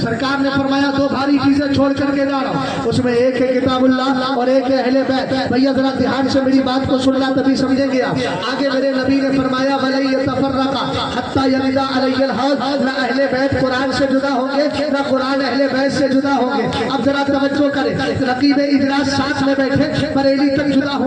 सरकार ने फरमाया 2 भारी चीजें छोड़ करके जा रहा हूं, उसमें एक है किताबुल्लाह और एक है अहले बैत। भैया जरा ध्यान से मेरी बात को सुनना तभी समझेंगे आप। आगे मेरे नबी ने फरमाया वलन यतफर्रका हत्ता यरिदा अलैहिल हौद, न अहले बैत कुरान से जुदा होंगे न कुरान अहले बैत से जुदा होंगे। अब जरा तवज्जो करें, रकीब इजलास साथ में बैठे बरेली तक जुदा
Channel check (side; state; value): both; identical; correlation 1.00